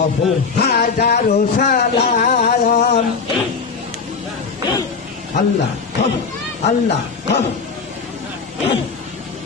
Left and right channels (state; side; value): quieter; right; 5.1 dB